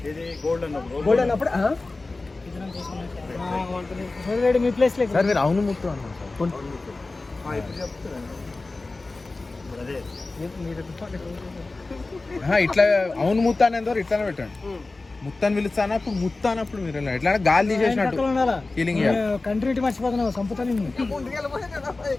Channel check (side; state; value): right; quieter; 3.4 dB